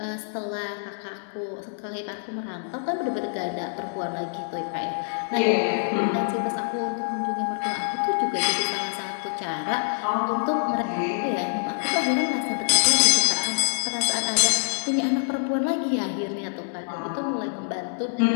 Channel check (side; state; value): right; silent; digital silence